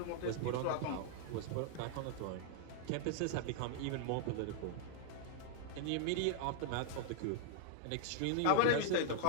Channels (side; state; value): both; different; correlation 0.00